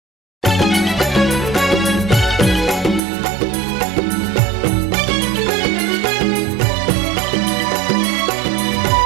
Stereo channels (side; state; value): left; drops out; at 3.0 s